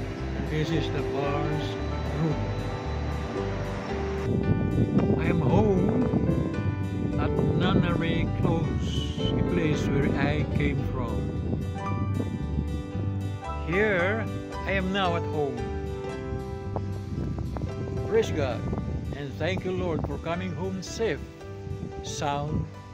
This is the bar's room. I am home at Nunnery Close, a place where I came from. Here, I am now at home. Praise God, and thank you, Lord, for coming home safe, sound,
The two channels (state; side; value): identical; both; correlation 1.00